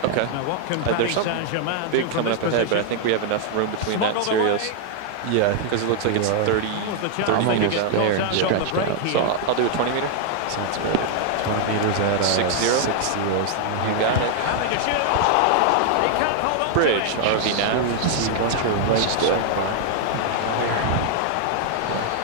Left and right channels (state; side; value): different; both; correlation 0.00